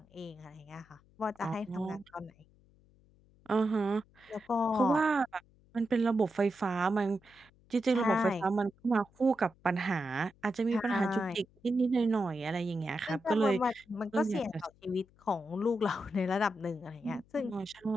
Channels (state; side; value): noise; left; hum, 30 dB below the sound